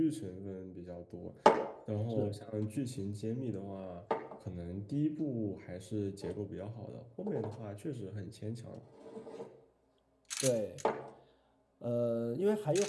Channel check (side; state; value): both; identical; correlation 1.00